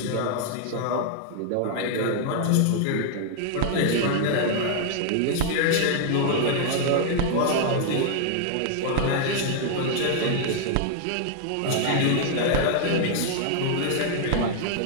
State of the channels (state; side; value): different; both; correlation 0.00